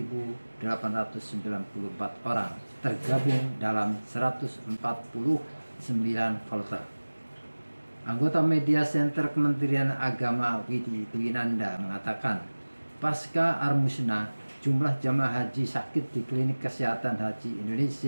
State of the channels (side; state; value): both; inverted; correlation -1.00